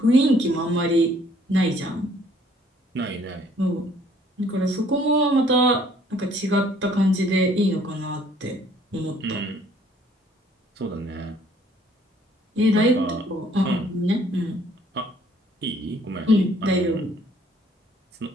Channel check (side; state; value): both; normal; correlation 0.60